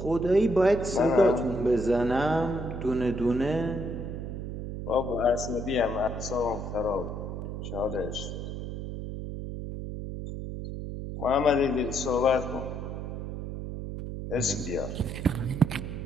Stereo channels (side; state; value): right; noise; hum, 6 dB below the sound